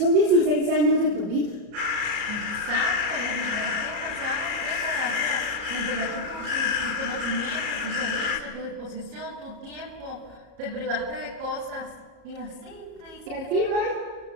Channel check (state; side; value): late; left; 34 ms